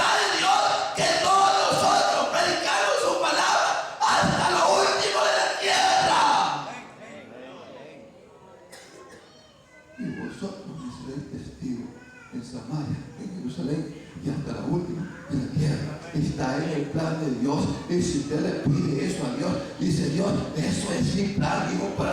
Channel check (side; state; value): both; identical; correlation 1.00